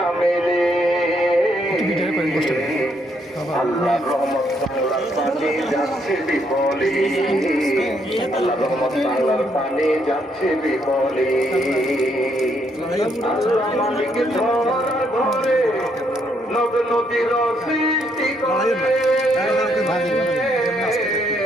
রে। আল্লাহর রহমত বাংলার পানি যাচ্ছে বিফলে, আল্লাহর রহমত বাংলার পানি যাচ্ছে বিফলে। আল্লাহ মালিক ধরার ঘরে নদ নদীর সৃষ্টি করে,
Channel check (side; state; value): both; normal; correlation 0.73